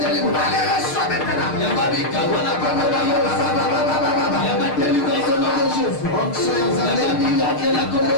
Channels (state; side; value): late; right; 6.6 ms